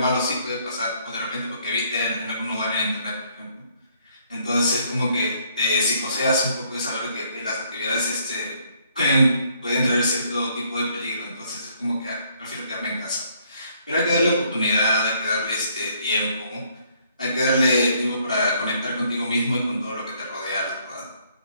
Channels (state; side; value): inverted; both; correlation -0.67